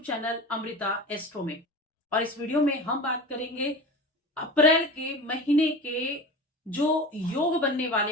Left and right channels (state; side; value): normal; both; correlation 0.32